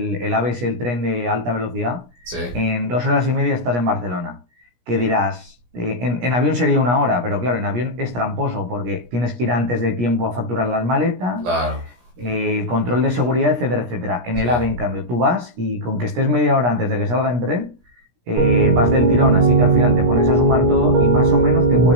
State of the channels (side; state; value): left; late; 17 ms